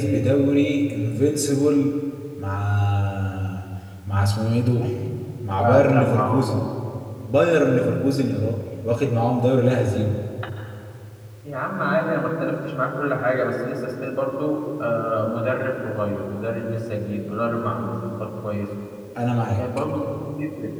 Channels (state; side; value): identical; both; correlation 1.00